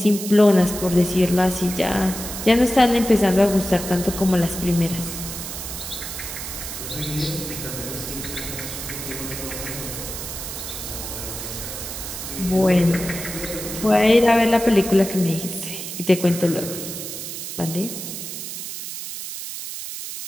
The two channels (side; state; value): right; noise; hiss, 7 dB below the sound